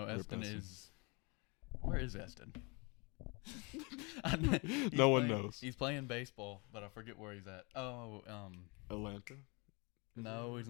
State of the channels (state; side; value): quieter; right; 29.7 dB